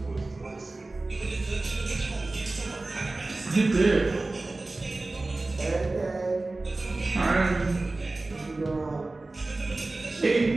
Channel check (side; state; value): left; quieter; 3.1 dB